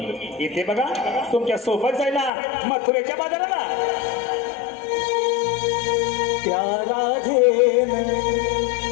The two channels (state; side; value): drops out; right; at 2.3 s